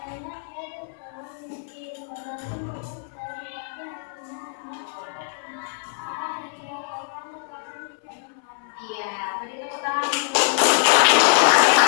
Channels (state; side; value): silent; right; 62 dB below the other